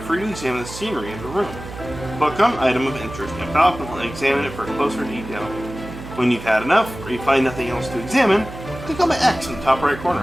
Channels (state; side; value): noise; right; hum, 12 dB below the sound